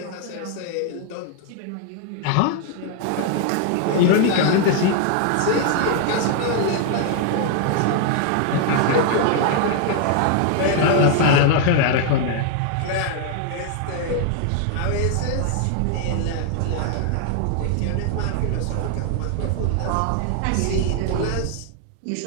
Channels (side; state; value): both; different; correlation 0.00